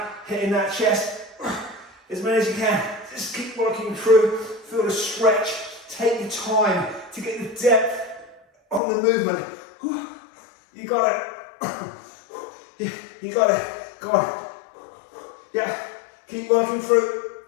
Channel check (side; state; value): right; drops out; at 8.8 s